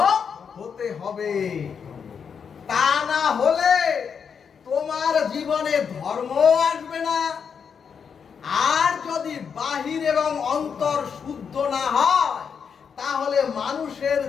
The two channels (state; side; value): quieter; right; 6.7 dB